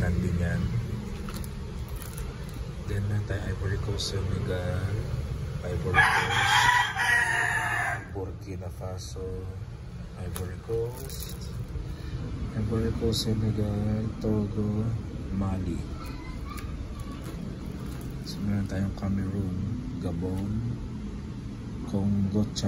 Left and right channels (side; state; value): both; identical; correlation 1.00